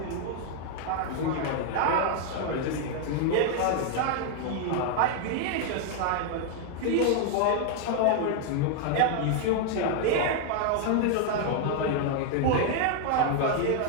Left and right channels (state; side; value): different; both; correlation 0.00